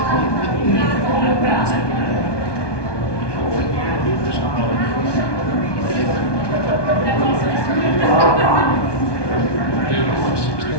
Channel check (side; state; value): right; late; 1.2 ms